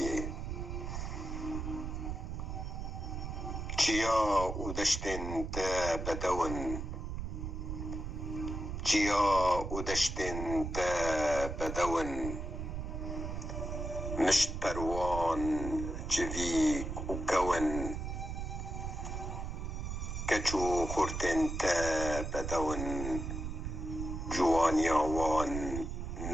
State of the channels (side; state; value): right; noise; rumble, 5 dB below the sound